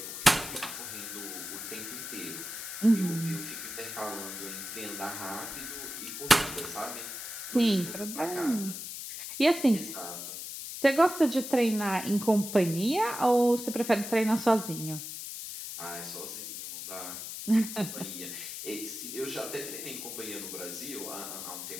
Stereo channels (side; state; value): left; noise; hiss, 8 dB below the sound